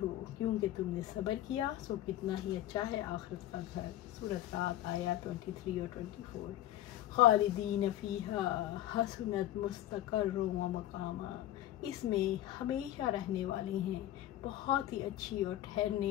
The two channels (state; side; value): quieter; right; 13.7 dB